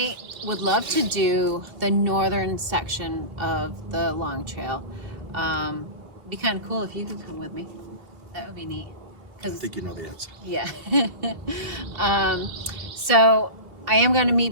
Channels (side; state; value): left; late; 2.7 ms